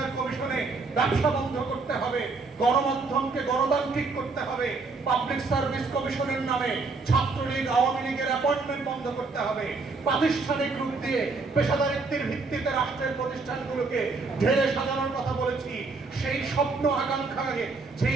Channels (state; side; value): quieter; left; 4.0 dB